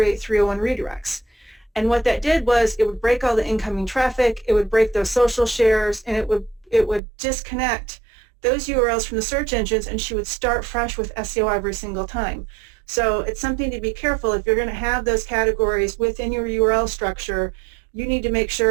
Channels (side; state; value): left; drops out; at 7.0 s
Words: 301 redirects. And what that did was it would break all the incoming traffic, it would break those social shares, and it would disconnect those URLs from the search engines, and she would start fresh with SEO every single time. So it's something to be careful. If you're going to have those categories within your URL structure, you need to make